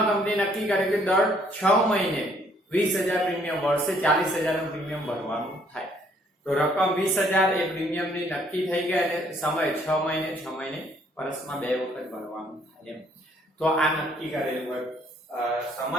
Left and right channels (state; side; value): normal; both; correlation 0.65